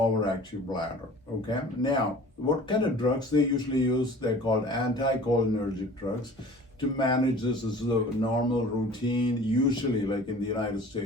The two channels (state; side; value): normal; both; correlation 0.45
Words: bladder. Okay. Now, what kind of drugs they usually use? They're called anticholinergic drugs. To manage this is the normal routine, usually like in the United